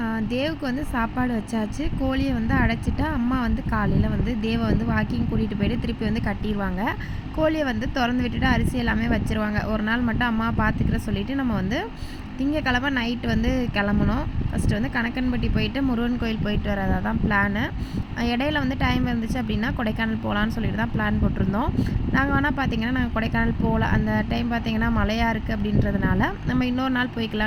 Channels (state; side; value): identical; both; correlation 1.00